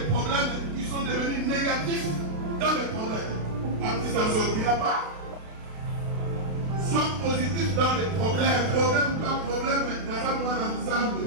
problèmes qui sont devenus négatifs dans les problèmes. Après, ça ne sortira pas. Sois positif dans les problèmes. Problème ou pas problème, dans un monde ensemble.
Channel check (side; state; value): left; late; 32 ms